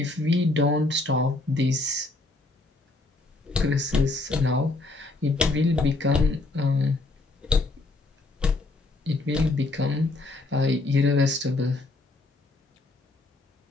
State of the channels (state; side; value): quieter; right; 3.1 dB